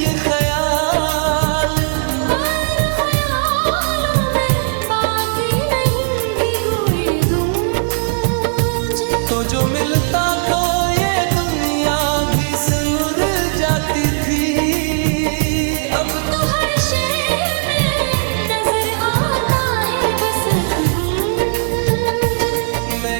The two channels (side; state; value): left; silent; 55 dB below the other